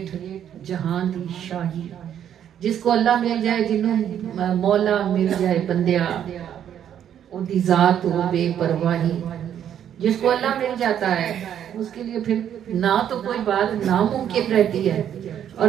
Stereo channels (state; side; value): quieter; left; 9.7 dB